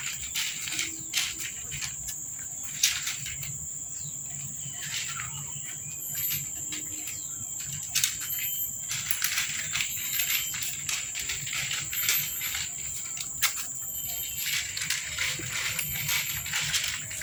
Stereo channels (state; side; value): identical; both; correlation 1.00